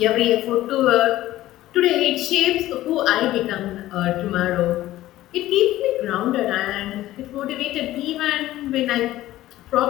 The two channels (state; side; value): quieter; right; 15.2 dB